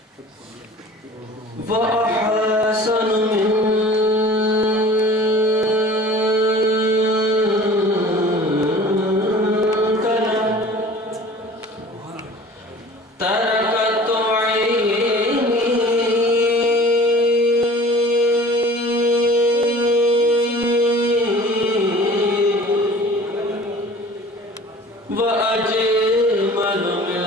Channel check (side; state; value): both; normal; correlation 0.44